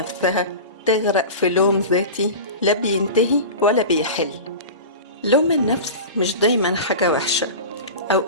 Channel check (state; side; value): inverted; both; correlation -0.31